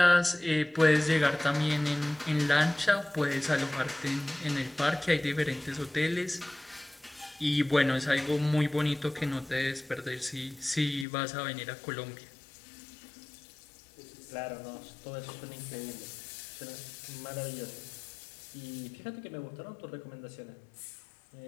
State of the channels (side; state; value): right; drops out; at 11.1 s